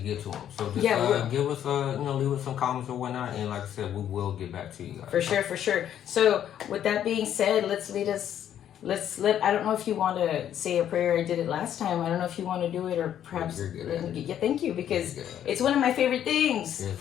to them. So just give us, leave us some comments or whatnot. And like I said, we will get back to you guys. For sure. So with that being said, I don't know if you want to say a prayer. I did it last time. I don't know if you want to do it or perhaps. Yeah, thank you, because it's one of my favorite things. Yeah,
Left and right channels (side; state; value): right; quieter; 10.3 dB